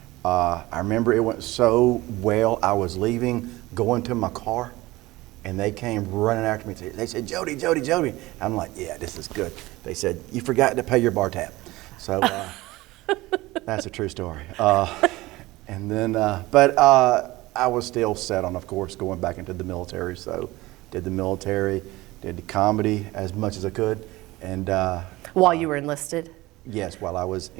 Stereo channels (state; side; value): quieter; left; 19.4 dB